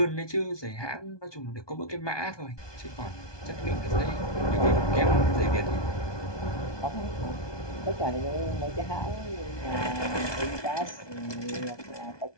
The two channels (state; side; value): late; right; 1.2 ms